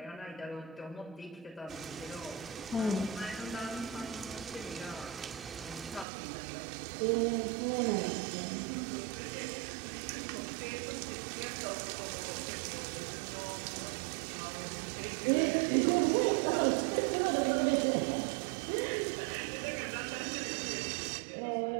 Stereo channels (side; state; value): left; drops out; at 6.1 s